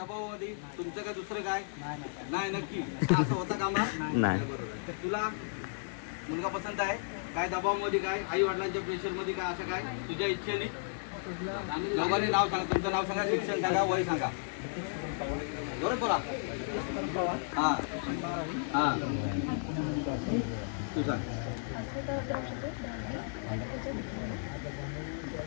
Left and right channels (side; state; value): right; silent; digital silence